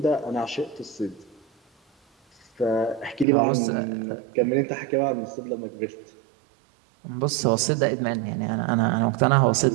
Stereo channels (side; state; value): left; drops out; at 3.2 s